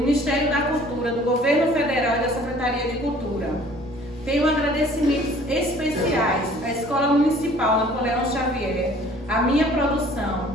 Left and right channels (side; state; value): both; normal; correlation 0.52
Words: da Cultura, do Governo Federal e da Secretaria de Cultura. Tenho agradecimentos especiais à Escola Municipal Napoleão Xavier, à minha